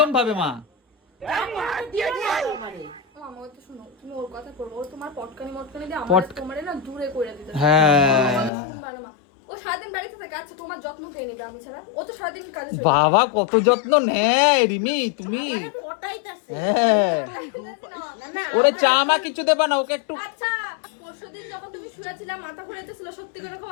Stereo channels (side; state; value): right; drops out; at 8.5 s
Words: ভাবে মা। মামা, ও তো শোনো, তুমি ওর কথা করবো, ও তোমার পটকানি মটকানি দিয়ে পট- তোমারে না দূরে করে দিতে। হ্যাঁ শুনবা না মা, ও সারাদিন বাড়িতে থাকে। আচ্ছা, তোমার যত্ন কে নেবে আমি ছাড়া? ও তো সারাদিন কাজে চলে যায়। বাবা কত যত্ন নেয় রিমি তুমি। হ্যাঁ না, না, ওরে চা মা কিছু দেবা না ওকে একটু। আচ্ছা, পরশুদিন যখন তুমি শুয়েছিলাম, মাথা ঘুরাইতেছিল, সত্যি করে